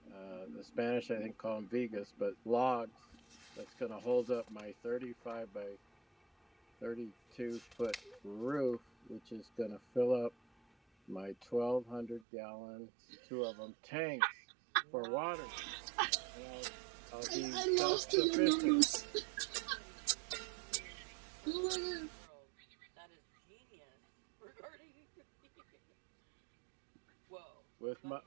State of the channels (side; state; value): left; drops out; at 12.2 s